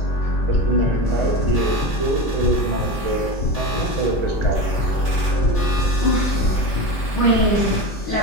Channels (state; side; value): late; right; 5.1 ms